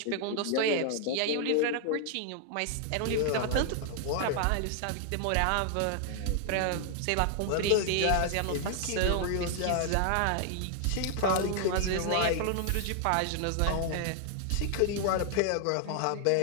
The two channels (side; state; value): both; different; correlation 0.00